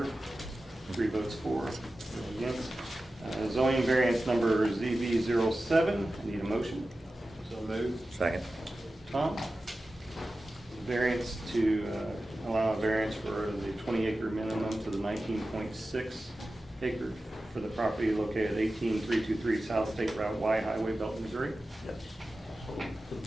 3 votes for, 0 against. Zoning variance number ZV07. Need a motion. So moved. Second. Tom? Variance to allow a variance for the 20-acre minimum to the 19.6 acre for the property located at 18323 South State Route Y Highway, Belton, Missouri. Yes. So the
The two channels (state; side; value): normal; both; correlation 0.94